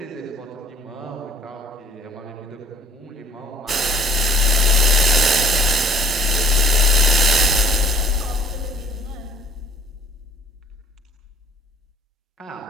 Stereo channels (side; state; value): both; normal; correlation 0.55